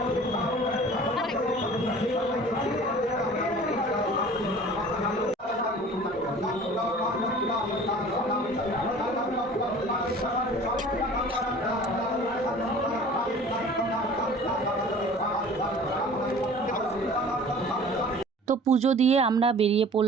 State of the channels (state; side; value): normal; both; correlation 0.45